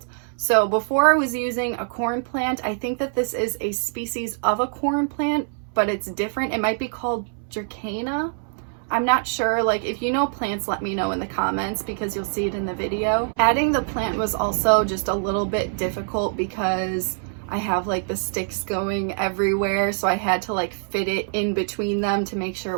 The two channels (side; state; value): left; silent; 63 dB below the other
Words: So before I was using a corn plant. I think that this is a species of a corn plant, but it's different. It might be called Dracana. I'm not sure. Like, if you know plants, let me know in the comments because you'll see it in the video. Adding the plant was also just a little bit difficult because I have like the sticks going everywhere, so I had to like fit it in between them to make sure